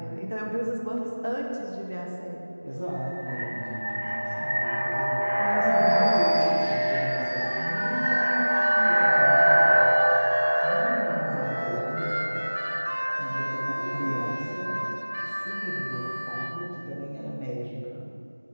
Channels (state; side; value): inverted; both; correlation -1.00